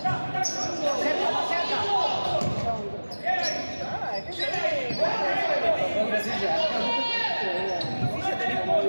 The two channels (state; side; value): inverted; both; correlation -1.00